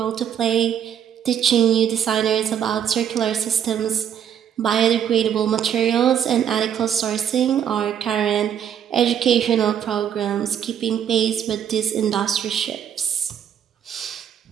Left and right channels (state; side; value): quieter; left; 9.1 dB